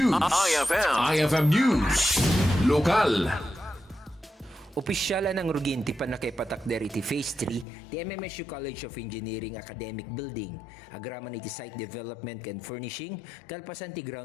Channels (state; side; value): drops out; right; at 7.7 s